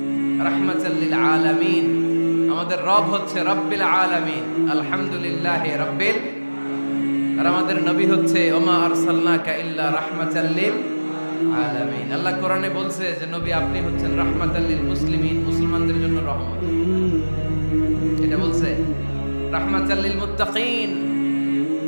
রাহমাতাল লিল আলামিন। আমাদের রব হচ্ছে রব্বিল আলামিন, আলহামদুলিল্লাহি রাব্বিল। আর আমাদের নবী হচ্ছে ওমা আরসালনাকা ইল্লা রাহমাতাল লিল আলামিন। আল্লাহ কোরআনে বলছে যে নবী আপনি হচ্ছেন রাহমাতাল লিল মুসলিমিন, মুসলমানদের জন্য রহমত। এটা বলছে রাহমাতাল লিল মুত্তাকিন।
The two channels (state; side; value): inverted; both; correlation -1.00